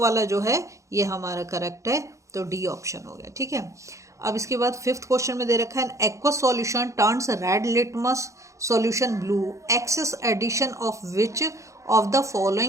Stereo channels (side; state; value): left; late; 0.15 ms